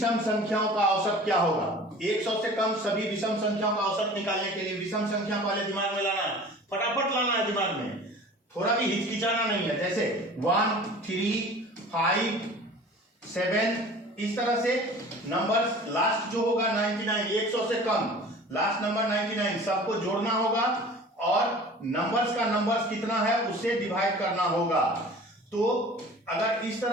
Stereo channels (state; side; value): normal; both; correlation 0.43